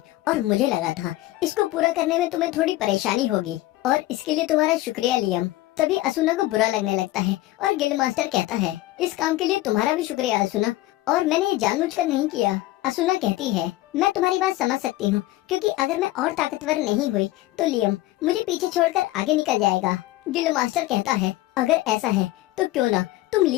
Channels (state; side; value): quieter; right; 17.0 dB